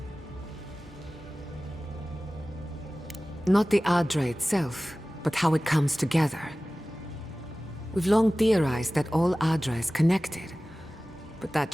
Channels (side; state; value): both; normal; correlation 0.97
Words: Not the Adra itself, but how it comes together. We've long theorized that all Adra is connected, but that